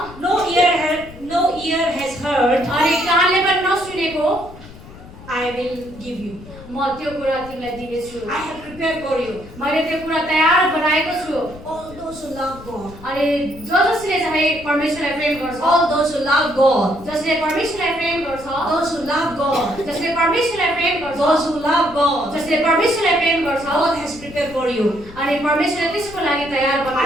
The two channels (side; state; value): left; noise; rumble, 18 dB below the sound